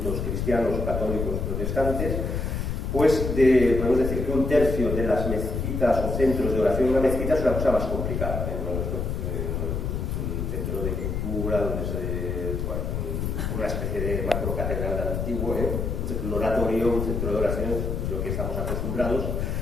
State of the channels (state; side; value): noise; left; rumble, 2 dB below the sound